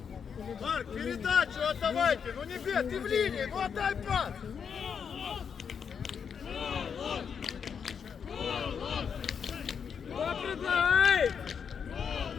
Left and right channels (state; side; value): quieter; right; 6.9 dB